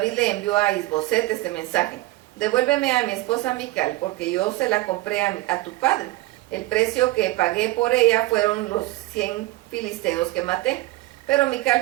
le envió a Isboset este mensaje: devuélveme a mi esposa Mical, porque yo se la compré a tu padre. El precio que pagué por ella fueron los 100 filisteos que maté. Pero Mical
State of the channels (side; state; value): left; quieter; 18.7 dB